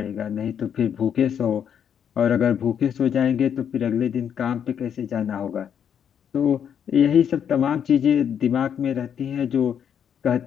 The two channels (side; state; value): right; quieter; 8.4 dB